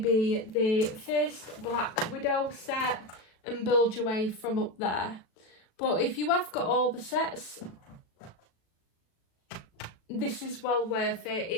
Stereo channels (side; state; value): right; late; 36 ms